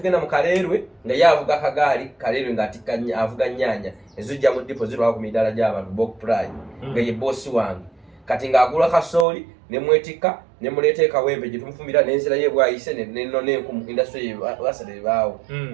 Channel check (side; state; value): left; drops out; at 9.2 s